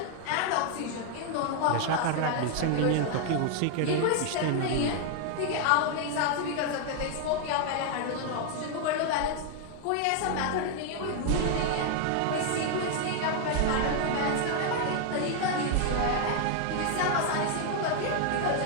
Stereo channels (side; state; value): both; different; correlation 0.00